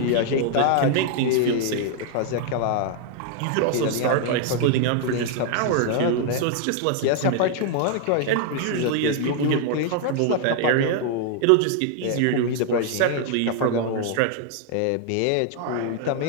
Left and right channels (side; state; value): both; different; correlation 0.00